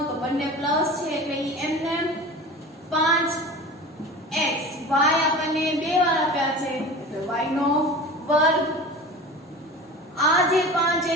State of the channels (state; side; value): normal; both; correlation 0.35